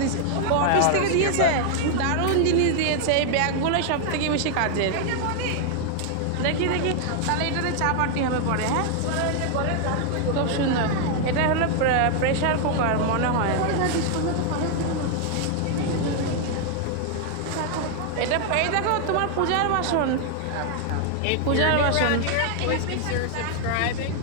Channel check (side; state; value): both; different; correlation 0.00